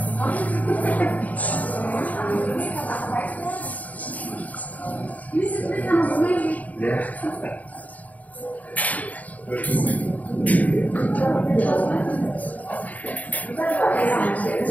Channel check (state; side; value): late; right; 0.073 ms